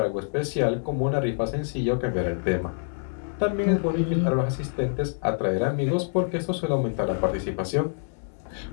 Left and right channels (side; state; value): right; silent; digital silence